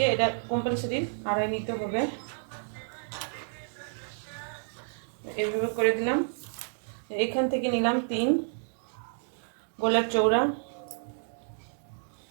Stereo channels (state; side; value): silent; left; digital silence